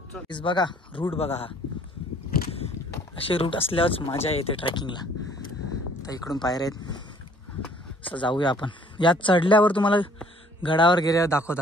बघा रूट बघा, हा असे रूट असल्यावरच मजा येते ट्रेकिंगला. तर इकडून पायऱ्या आहेत, असं जाऊया आपण. यात चढल्यावर तुम्हाला गडावर गेल्यावर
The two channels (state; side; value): normal; both; correlation 0.57